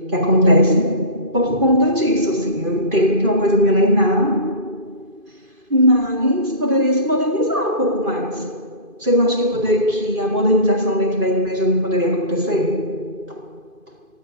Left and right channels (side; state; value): left; late; 2.5 ms